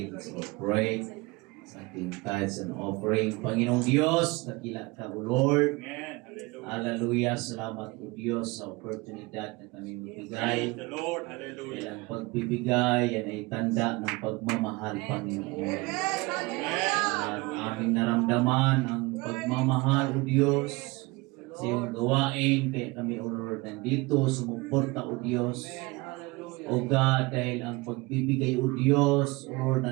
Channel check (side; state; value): left; quieter; 24.1 dB